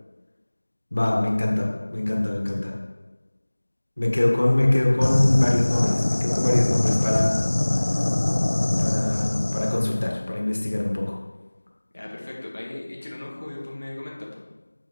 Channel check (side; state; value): both; inverted; correlation -1.00